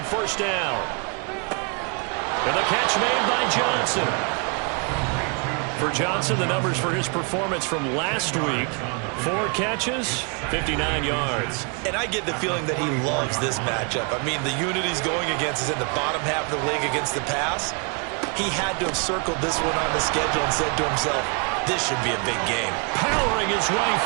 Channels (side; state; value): left; quieter; 35.6 dB